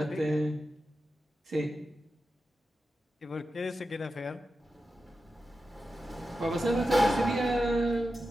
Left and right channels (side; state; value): both; normal; correlation 0.91